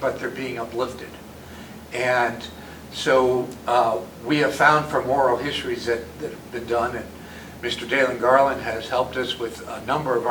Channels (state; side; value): identical; both; correlation 1.00